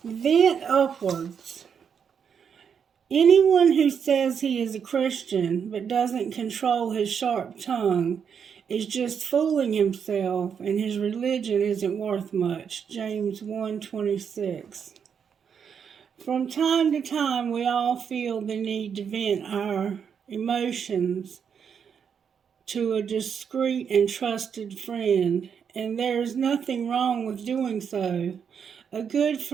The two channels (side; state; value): left; quieter; 7.2 dB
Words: Vent upwards. Anyone who says he is a Christian but doesn't control his sharp tongue is just fooling himself, and his religion isn't worth much. James 1:26. From time to time, we all feel the need to vent our emotions to a discreet and trusted friend, and there is nothing wrong with doing so. A good